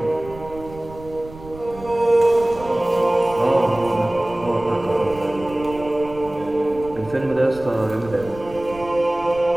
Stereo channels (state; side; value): noise; right; rumble, 17 dB below the sound